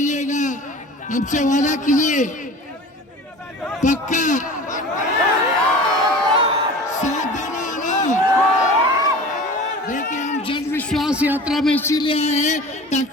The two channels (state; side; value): normal; both; correlation 0.39